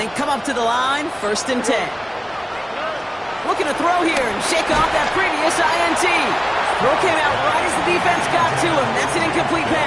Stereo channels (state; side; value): identical; both; correlation 1.00